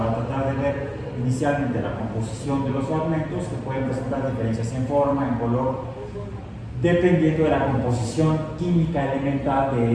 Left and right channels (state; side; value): identical; both; correlation 1.00